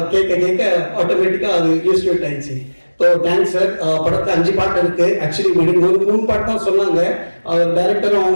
கேட்க ஆட்டோமேட்டிக்காக அது யூஸ்ட் ஆயிடுச்சு. So thanks sir. படத்தில் 5 பாட்டு இருக்கு. ஆக்சுவலி 3 பாட்டு தான் சொன்னாங்க. அவர் டைரக்டரும்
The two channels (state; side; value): inverted; both; correlation -1.00